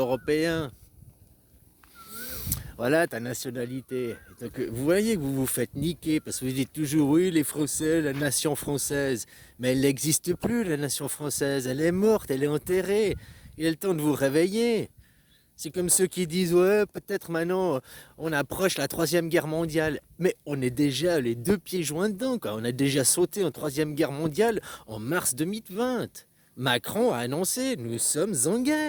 Voilà ta nationalité. Donc, vous voyez que vous vous faites niquer parce que vous dites toujours oui les Français, la nation française. Mais elle n'existe plus la nation française. Elle est morte, elle est enterrée. Il est le temps de vous réveiller. C'est comme ceux qui disent ouais peut-être maintenant on approche la troisième guerre mondiale. Mais on est déjà les deux pieds joints dedans quoi. On a déjà sauté en troisième guerre mondiale en mars 2020. Macron a annoncé nous sommes en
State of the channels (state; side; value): identical; both; correlation 1.00